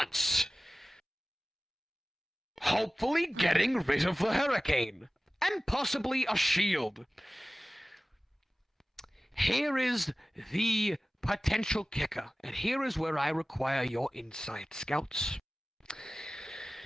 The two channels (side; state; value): both; normal; correlation 0.97